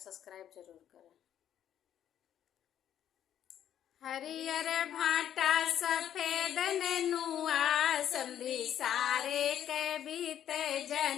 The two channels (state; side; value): quieter; right; 10.4 dB